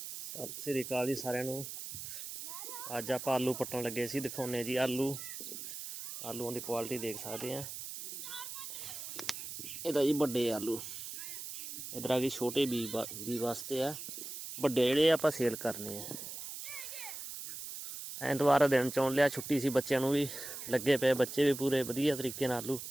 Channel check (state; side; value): noise; right; hiss, 8 dB below the sound